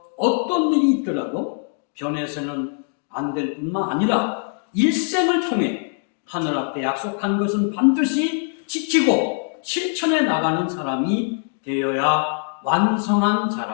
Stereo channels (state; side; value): silent; right; 55 dB below the other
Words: 어떤 일이 있더라도 변해서는 안 될 뿐만 아니라 일생을 통해 하늘 앞에 약속한 것은 반드시 지키고 실천해 나가는 사람이 되어야 완성한